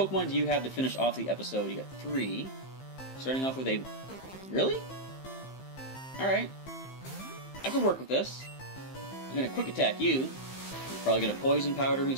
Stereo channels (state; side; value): late; right; 15 ms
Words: do you have to finish off the episode? You got 3. Starting off with a... Really? Alright. I could work with this. I'm gonna Quick Attack you. You're probably gonna Poison Powder me,